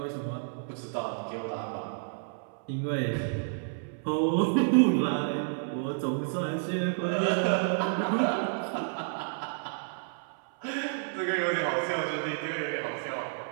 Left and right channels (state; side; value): silent; left; 58 dB below the other